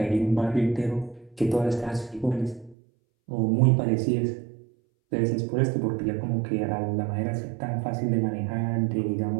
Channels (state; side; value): drops out; left; at 2.8 s